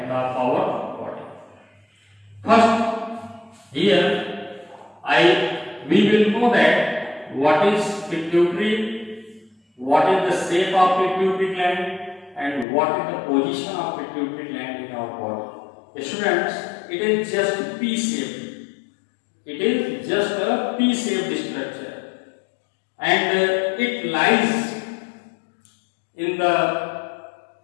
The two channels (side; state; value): right; drops out; at 12.7 s